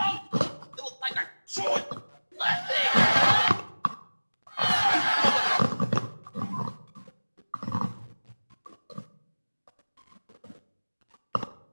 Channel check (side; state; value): both; inverted; correlation -1.00